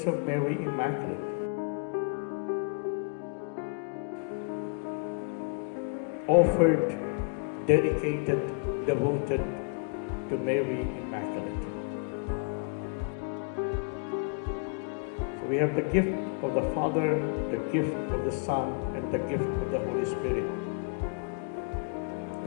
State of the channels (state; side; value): quieter; right; 37.1 dB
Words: of Mary Immaculate. Offered, dedicated, devoted to Mary Immaculate. So we have the gift of the Father, the gift of the Son, and the gift of the Holy Spirit.